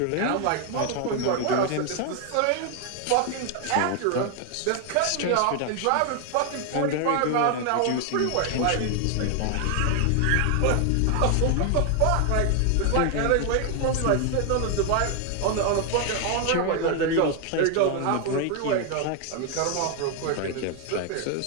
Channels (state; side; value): different; both; correlation 0.00